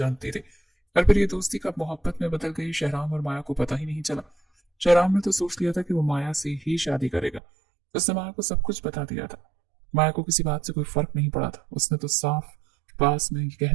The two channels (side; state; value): left; drops out; at 7.4 s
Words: थी। और फिर ये दोस्ती कब मोहब्बत में बदल गई, शहराम और माया को पता ही नहीं चला। शहराम ने तो सोच लिया था कि वो माया से ही शादी करेगा। उसने माया को सब कुछ बता दिया था। माया को किसी बात से कोई फर्क नहीं पड़ा था। उसने तो साफ पास में कह